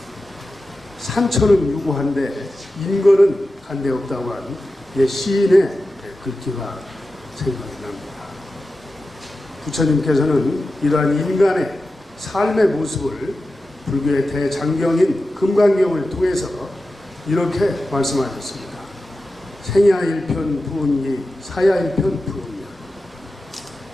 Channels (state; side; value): normal; both; correlation 0.93